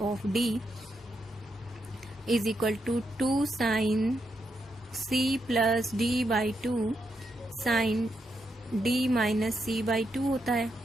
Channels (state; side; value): normal; both; correlation 0.82